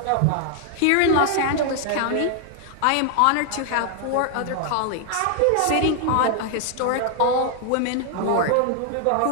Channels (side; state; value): both; different; correlation 0.00